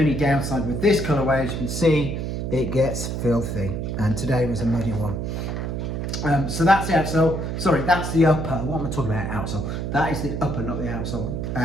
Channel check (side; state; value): right; noise; hum, 3 dB below the sound